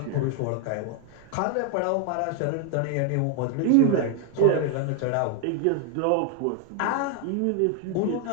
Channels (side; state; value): both; different; correlation 0.01